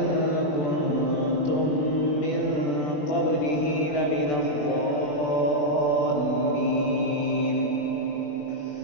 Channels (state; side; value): late; right; 20 ms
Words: كنتم من قبله لمن الضالين.